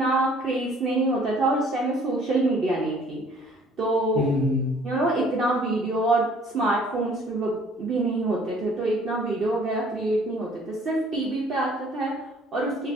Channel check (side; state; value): both; normal; correlation 0.57